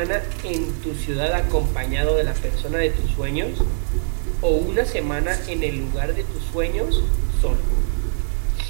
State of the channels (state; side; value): silent; left; 64 dB below the other